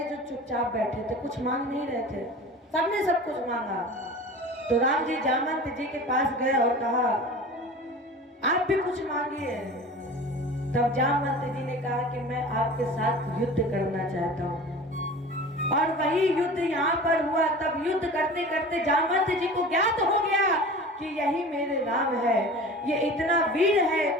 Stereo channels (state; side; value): normal; both; correlation 0.37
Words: जो चुपचाप बैठे थे, कुछ मांग नहीं रहे थे। सबने सब कुछ मांगा। तो राम जी जामवंत जी के पास गए और कहा आप भी कुछ मांगिए। तब जामवंत जी ने कहा कि मैं आपके साथ युद्ध करना चाहता हूँ। और वही युद्ध यहाँ पर हुआ। तब युद्ध करते करते जामवंत जी को ज्ञात हो गया कि यही मेरे राम है। ये इतना वीर है